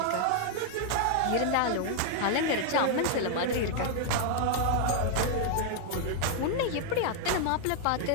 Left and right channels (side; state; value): both; different; correlation -0.01